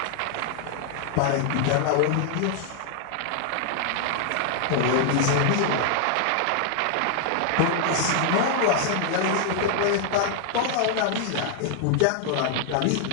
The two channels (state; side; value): different; both; correlation 0.00